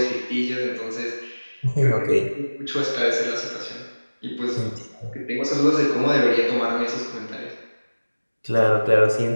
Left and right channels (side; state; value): both; inverted; correlation -1.00